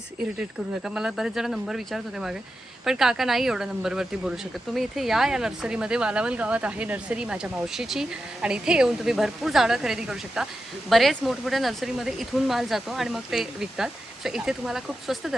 इरिटेट करू नका. मला बरेच जण नंबर विचारत होते मागे, पण काका नाही एवढा नंबरवरती बोलू शकत. तुम्ही इथे या नर्सरीमध्ये. वालावल गावात आहे नर्सरी माझ्या मावशीची, आणि इथे येऊन तुम्ही भरपूर झाडं खरेदी करू शकता. बरेच मोठमोठ्या नर्सरीमध्ये इथून माल जातो आणि मग ते विकतात. सो इथे तुम्हाला खूप स्वस्त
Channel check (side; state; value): both; normal; correlation 0.90